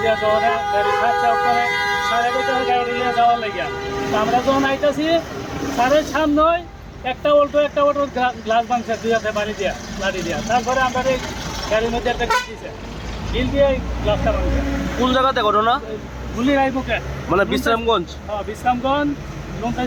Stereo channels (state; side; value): identical; both; correlation 1.00